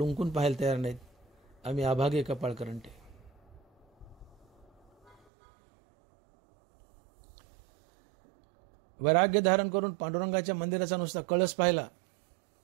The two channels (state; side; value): drops out; left; at 5.2 s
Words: पाहायला तयार नाहीत. आम्ही अभागे, कपाळ करंटे. वैराग्य धारण करून पांडुरंगाच्या मंदिराचा नुसता कळस पाहिला